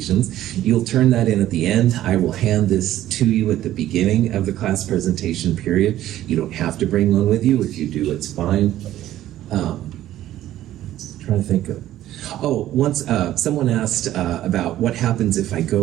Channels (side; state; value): left; quieter; 13.3 dB